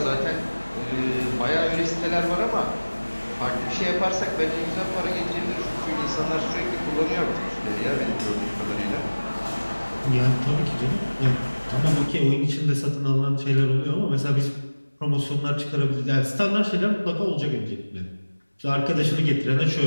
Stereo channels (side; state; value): both; inverted; correlation -1.00